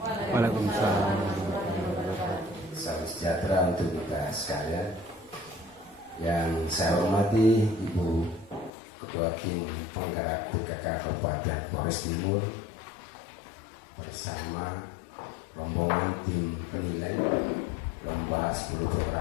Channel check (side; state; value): right; drops out; at 8.7 s